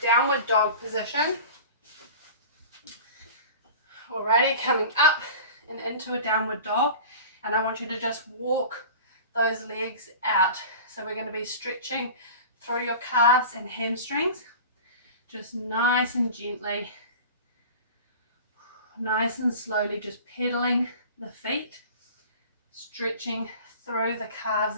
dog position. Alrighty, coming up and into a downward dog, and I want you to just walk those legs out. So we're going to be stretching through your calves and hamstrings, just nice and gently, nice and slowly, just pedaling the feet, stretching through the calves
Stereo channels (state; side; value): inverted; both; correlation -0.38